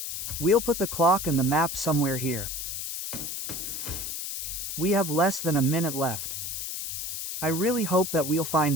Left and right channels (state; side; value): noise; left; hiss, 5 dB below the sound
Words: We'll put the clock and the map somewhere here. We have less than a minute left. I really hope that we'll